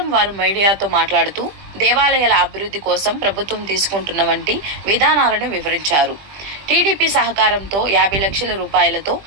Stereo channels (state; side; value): late; left; 20 ms